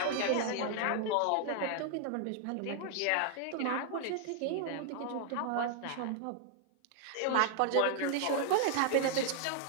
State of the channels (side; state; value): both; different; correlation 0.00